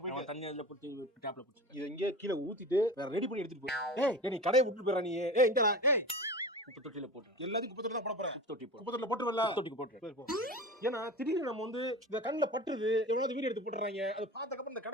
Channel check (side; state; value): both; normal; correlation 0.32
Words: போய் தண்ணி அதுல போட்டு டேப்ல போட்டு இத இங்கே கீழ ஊத்திட்டு வேற ரெடி பண்ணி எடுத்துட்டு போ. ஏய் நீ கடையை விட்டு போறா நீ. ஏய் இங்கடா. ஏய் குப்பை தொட்டில போட்டு எல்லாத்தையும் குப்பை தொட்டில தான் போட போறேன். குப்பை தொட்டி போட்டு குப்பை தொட்டில போட்டுறல. குப்பை தொட்டிக்கு போட்டு. ஏன்னா திடீர்னு நம்ம வந்து இந்த கண்ணுல பட்டுது எவ்வளவு வீடியோ எடுத்து போட்டுறாங்க. அது பார்த்ததுக்கு அப்புறம் இந்த